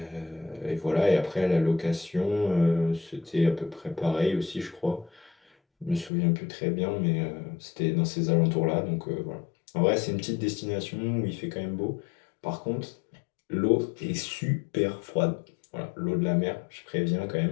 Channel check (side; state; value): right; drops out; at 6.1 s